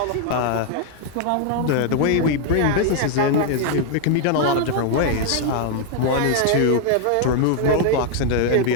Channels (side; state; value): both; different; correlation 0.00